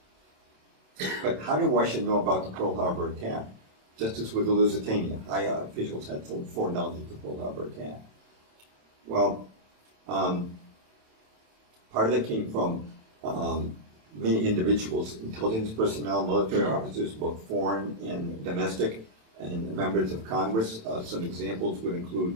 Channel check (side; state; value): left; late; 27 ms